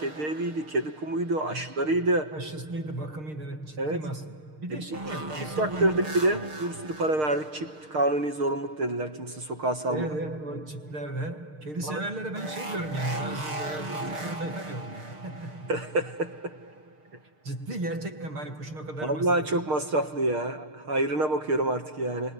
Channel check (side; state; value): left; late; 6.6 ms